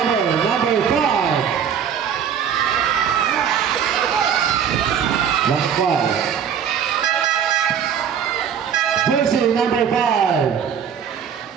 5. Last 5. Jersey number 5.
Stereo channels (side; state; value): left; quieter; 8.0 dB